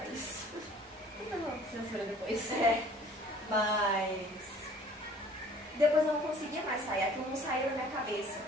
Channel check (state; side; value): normal; both; correlation 0.52